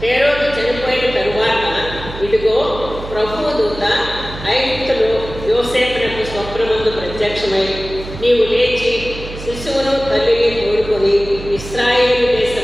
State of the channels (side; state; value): right; noise; hum, 12 dB below the sound